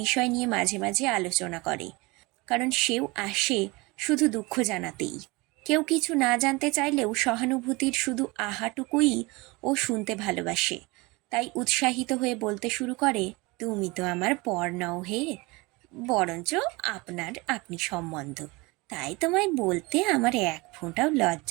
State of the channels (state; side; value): quieter; left; 24.6 dB